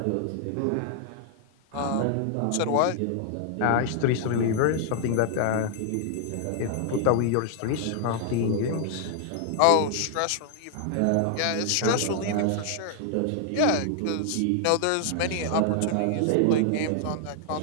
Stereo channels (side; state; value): both; different; correlation 0.00